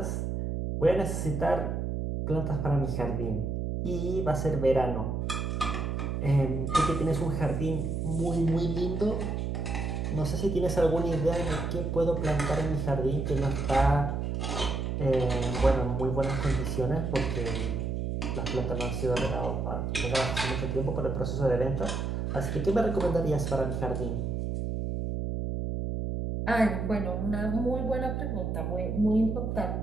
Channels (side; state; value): right; noise; hum, 1 dB below the sound